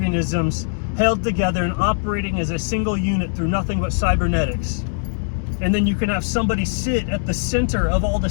held together and operating as a single unit through nothing but cybernetics. And then you can have somebody sit at the center of all the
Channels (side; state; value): right; silent; digital silence